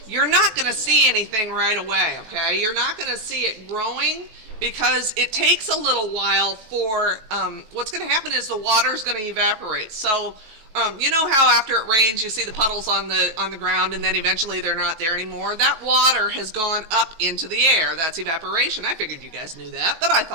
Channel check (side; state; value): left; late; 19 ms